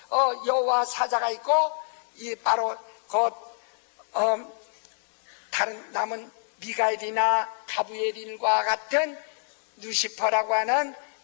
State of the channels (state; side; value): silent; right; digital silence